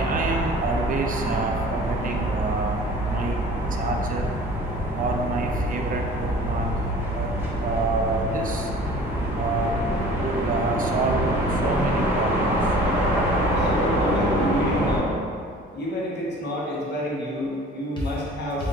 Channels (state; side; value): normal; both; correlation 0.46